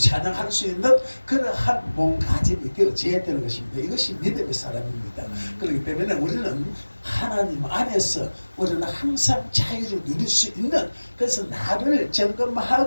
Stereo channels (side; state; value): both; inverted; correlation -1.00